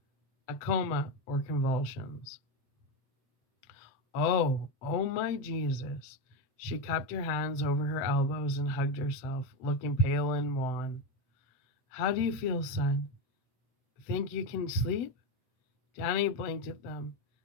A coma or convulsions. Oh my Jesus. She cupped her hands over her elbows and hugged herself, looking pale and wan. How do you feel, son? Think you can sleep? Danny blinked at them.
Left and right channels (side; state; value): right; late; 7.7 ms